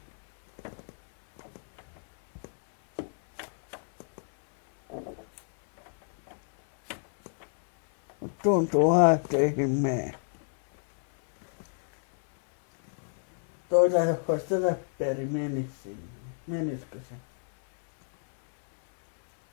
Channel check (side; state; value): right; silent; 59 dB below the other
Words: Tuntuu että ei mene. Toisaalta jos olisi tätä peri menis sinne. Menisikö se?